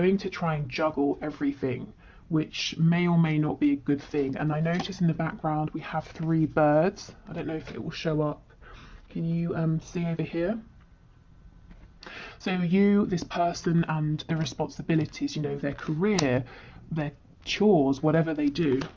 to try and juggle everything, which may or may not be a good thing. And I notice in the background we have 3 birds. I don't know if it will show up. Can you see over here? So you, this person, and the responsibilities, you know, their career, their chores, whatever they do.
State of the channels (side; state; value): both; identical; correlation 1.00